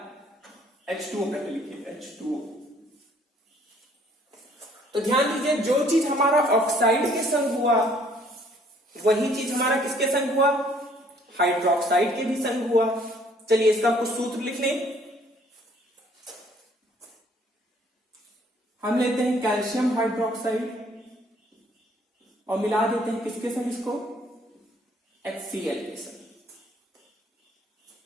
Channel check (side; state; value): both; normal; correlation 0.61